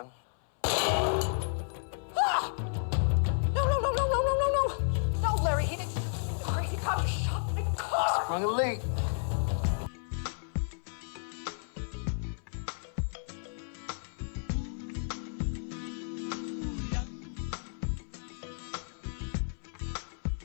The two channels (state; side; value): silent; right; 56 dB below the other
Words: Ah! No, Larry, he didn't. The crazy cop just shot my car. Sprung a leak.